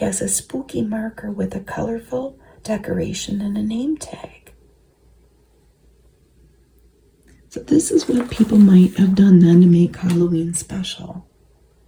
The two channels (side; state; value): both; identical; correlation 1.00